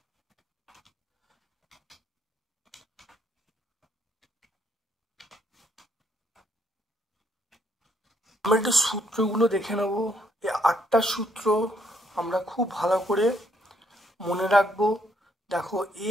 আমরা একটু সূত্রগুলো দেখে নেব। এই 8টা সূত্র আমরা খুব ভালো করে মনে রাখবো। দেখো a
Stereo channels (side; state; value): both; normal; correlation 0.71